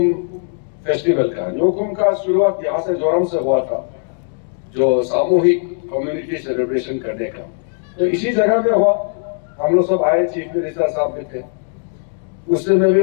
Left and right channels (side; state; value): right; silent; digital silence